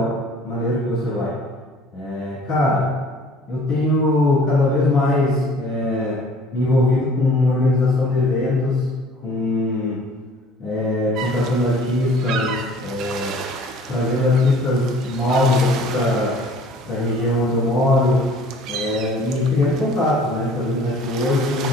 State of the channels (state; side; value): normal; both; correlation 0.52